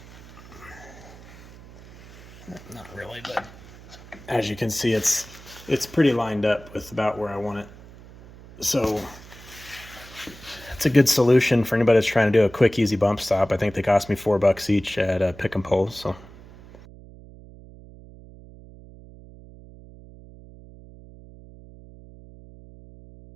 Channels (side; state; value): right; noise; hum, 19 dB below the sound